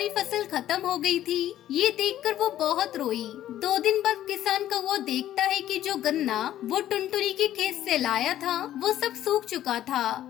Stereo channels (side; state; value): right; quieter; 12.5 dB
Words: फसल खत्म हो गई थी। ये देखकर वो बहुत रोई। 2 दिन बाद किसान कौवा देखता है कि जो गन्ना वो टुनटुनी के खेत से लाया था वो सब सूख चुका था